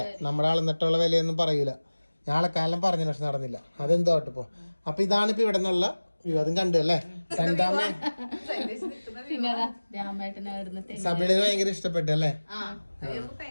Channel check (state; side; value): inverted; both; correlation -1.00